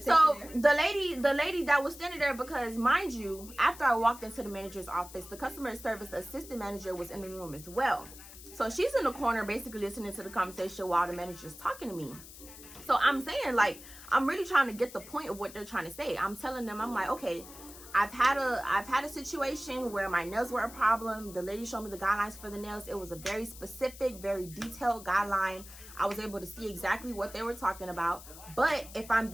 So it the lady that was standing there, because mind you, after I walked into the manager's office, the customer service assistant manager was in the room as well. So she's in the corner basically listening to the conversation while the manager's talking to me. So I'm saying, like, I'm really trying to get the point of what they're trying to say. I'm telling them, I'm like, okay, I've had a situation where my nails were a problem. The lady showed me the guidelines for the nails. It was a very specific, very detailed guideline. I was able to see exactly what they were talking about. But if I'm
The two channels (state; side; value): noise; left; hiss, 16 dB below the sound